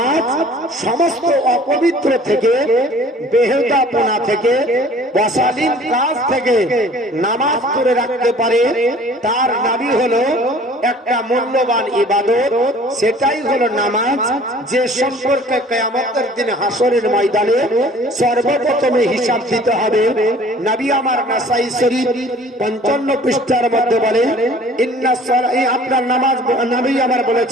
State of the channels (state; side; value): normal; both; correlation 0.50